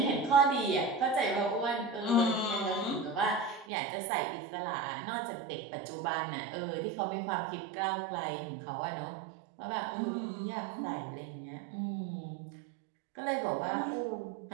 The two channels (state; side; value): drops out; left; at 3.7 s